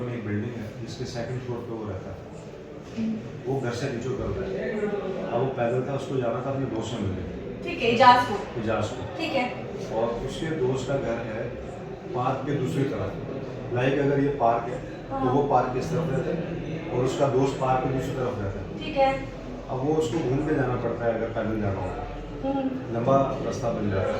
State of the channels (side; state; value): both; identical; correlation 1.00